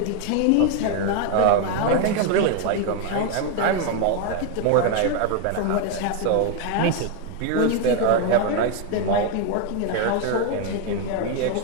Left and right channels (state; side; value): different; both; correlation 0.01